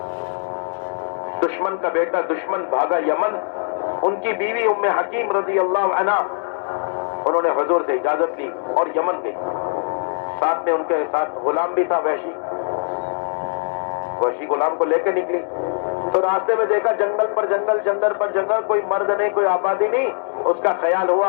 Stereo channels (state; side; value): silent; right; 65 dB below the other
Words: دشمن کا بیٹا دشمن بھاگا یمن، ان کی بیوی ام حکیم رضی اللہ عنہا، انہوں نے حضور سے اجازت لی اور یمن گئی. ساتھ میں ان کے ساتھ غلام بھی تھا، وحشی غلام کو لے کے نکلی. تو راستے میں دیکھا جنگل پر جنگل، جنگل پر جنگل، کوئی مرد نہیں، کوئی آبادی نہیں. اس کا خیال ہوا،